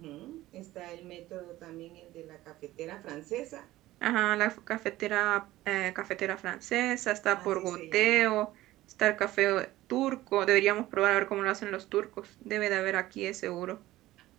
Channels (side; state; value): left; quieter; 16.3 dB